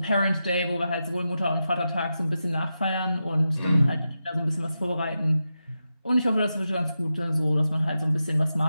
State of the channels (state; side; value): inverted; both; correlation -0.90